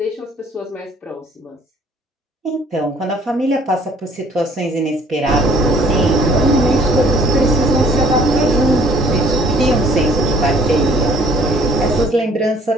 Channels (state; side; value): normal; both; correlation 0.57